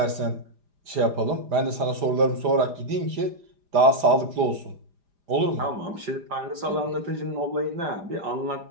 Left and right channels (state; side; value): late; left; 4.9 ms